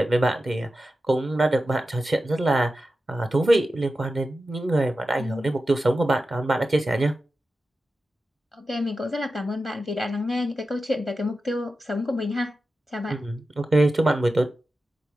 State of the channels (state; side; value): normal; both; correlation 0.92